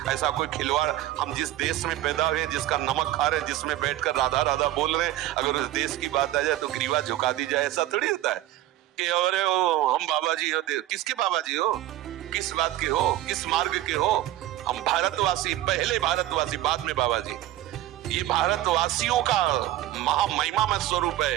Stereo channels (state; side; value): quieter; left; 14.4 dB